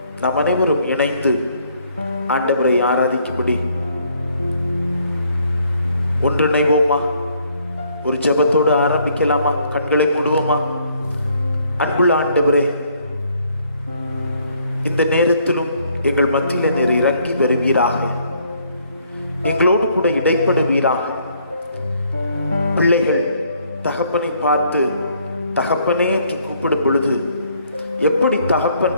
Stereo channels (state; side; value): inverted; both; correlation -0.66